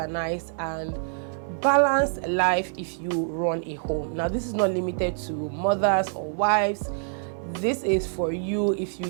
and balanced life if you run a home. Now, this is not limited to mothers or wives. This is for you if you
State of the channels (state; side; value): silent; left; 61 dB below the other